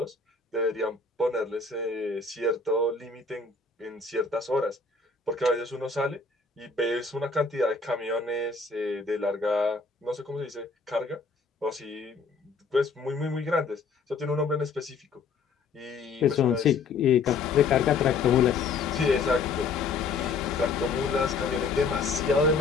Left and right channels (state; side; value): quieter; right; 4.4 dB